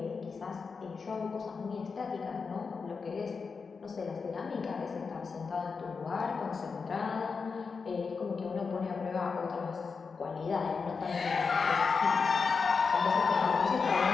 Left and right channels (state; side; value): quieter; right; 5.1 dB